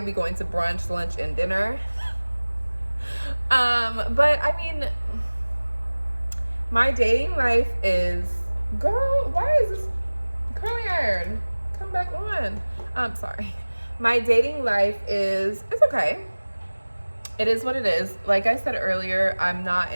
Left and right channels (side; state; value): both; inverted; correlation -1.00